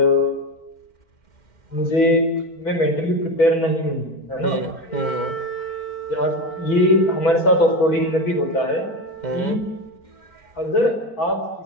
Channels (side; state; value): right; late; 4.5 ms